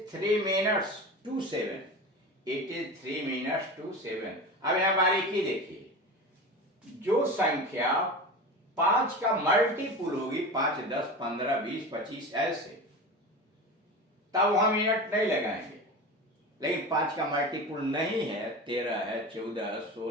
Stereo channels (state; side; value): normal; both; correlation 0.29